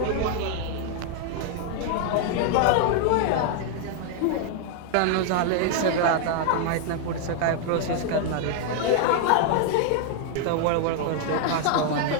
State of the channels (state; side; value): different; both; correlation 0.00